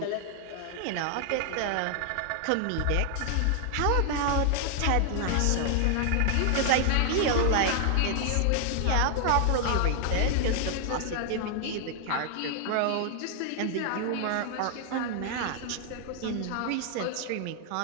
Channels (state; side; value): different; both; correlation 0.00